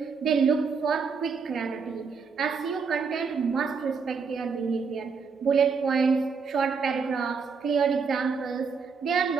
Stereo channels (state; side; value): quieter; left; 5.4 dB